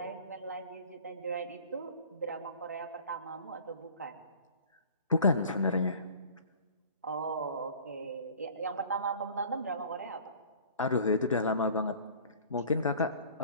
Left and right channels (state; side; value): inverted; both; correlation -0.46